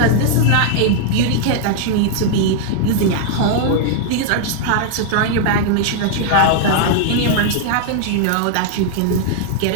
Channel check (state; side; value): different; both; correlation -0.01